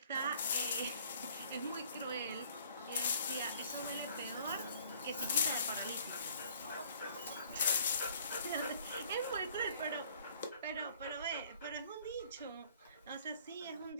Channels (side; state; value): both; inverted; correlation -0.56